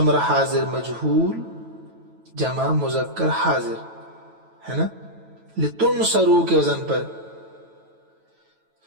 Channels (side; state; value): left; late; 9.1 ms